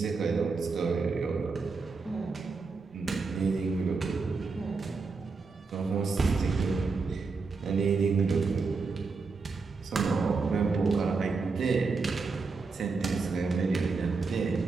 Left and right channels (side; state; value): left; quieter; 4.4 dB